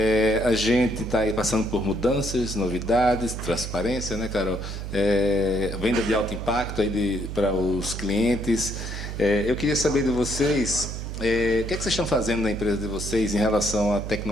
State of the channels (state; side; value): noise; right; hum, 6 dB below the sound